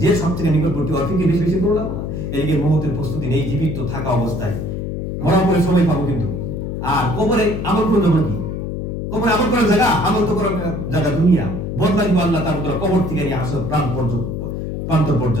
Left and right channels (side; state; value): left; noise; hum, 4 dB below the sound